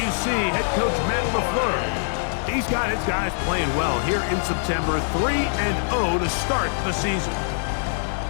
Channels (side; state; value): right; silent; digital silence